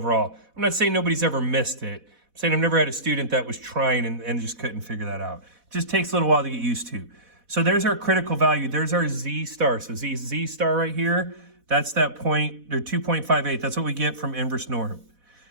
I'm not saying nobody's ever missed it. I'm saying I've never had a student that was trying and just couldn't figure that out. It just takes a little while to get used to. So there's our critical value. There's our Z star. So Z star right here, that's that point, or 2.58. That's what we get from inverse norm.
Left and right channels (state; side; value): late; left; 4.1 ms